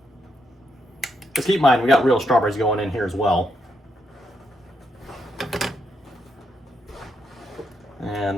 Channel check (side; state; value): both; normal; correlation 0.79